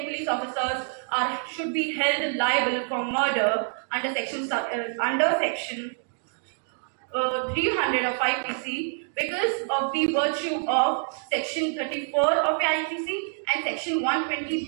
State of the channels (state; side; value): silent; left; 60 dB below the other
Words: police officers should be held liable for murder under section 300 of IPC because of the virtue of section 34 of IPC and section